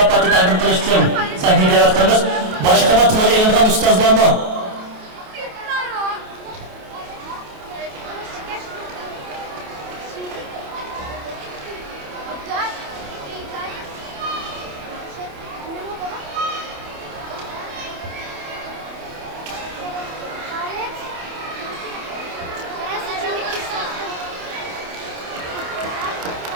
taqdim qilish uchun sahnaga da'vat qilamiz. Boshqa tilga ilingan ustozlarni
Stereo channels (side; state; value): left; late; 28 ms